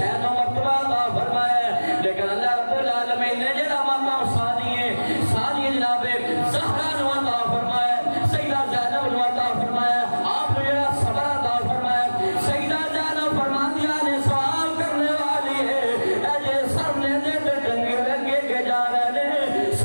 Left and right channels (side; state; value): both; inverted; correlation -1.00